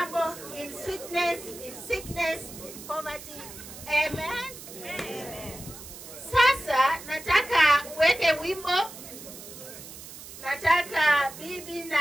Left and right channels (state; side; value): noise; right; hiss, 14 dB below the sound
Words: in sweetness, in sickness, in poverty. Amen. Amen. Sasa nataka uweke wimbo. Nataka bibi na